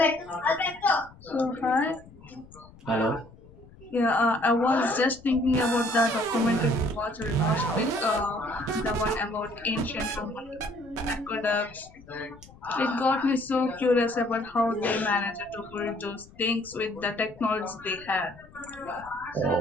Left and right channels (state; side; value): noise; left; rumble, 23 dB below the sound